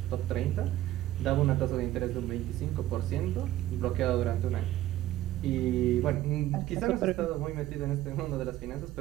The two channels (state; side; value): quieter; left; 14.5 dB